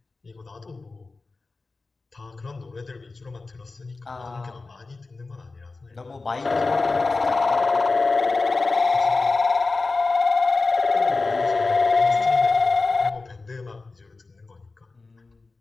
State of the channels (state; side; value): quieter; right; 3.7 dB